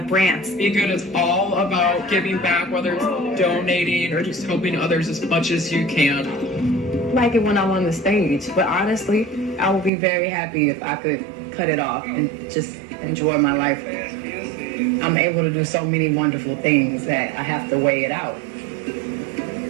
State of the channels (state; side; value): drops out; left; at 9.9 s